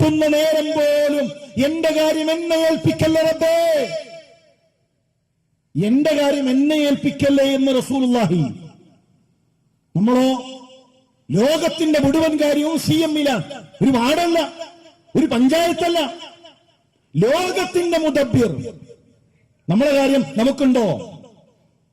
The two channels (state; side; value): identical; both; correlation 1.00